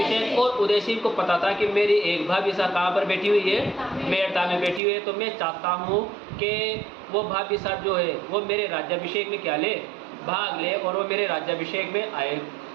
और उदय सिंह को पता था कि मेरी एक भाभी सा कहाँ पर बैठी हुई है? मेड़ता में बैठी हुई है। तो मैं चाहता हूँ कि वो भाभी साहब जो है वो मेरे राज्याभिषेक में क्या ले? भाग ले, और वो मेरे राज्याभिषेक में आए।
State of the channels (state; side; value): drops out; left; at 4.8 s